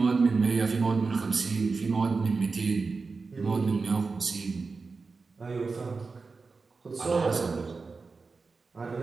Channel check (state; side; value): quieter; left; 4.3 dB